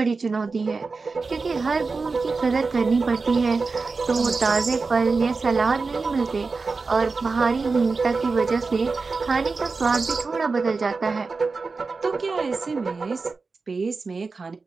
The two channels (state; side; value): quieter; left; 4.2 dB